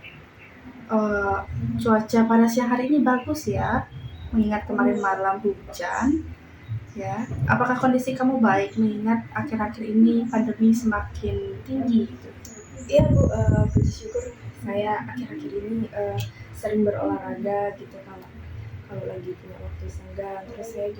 Cuaca pada siang hari ini bagus ya, mengingat kemarin malam hujan. Ya, apakah kondisi kamu baik mengingat akhir-akhir ini pandemi semakin tinggi? Iya Bu, puji syukur saya akhir-akhir ini sering berolahraga gitu kalau lagi punya waktu senggang. Terus saya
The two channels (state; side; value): identical; both; correlation 1.00